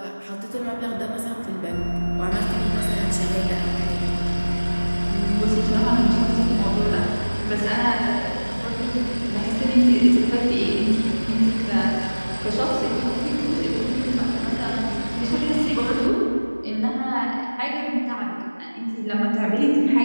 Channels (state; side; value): inverted; both; correlation -1.00